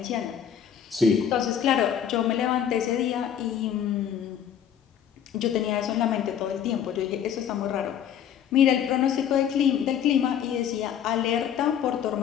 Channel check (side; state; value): right; quieter; 9.0 dB